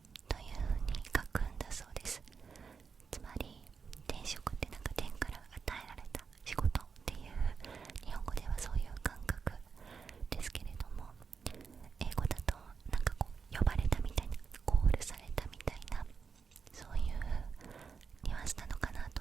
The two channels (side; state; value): left; quieter; 5.7 dB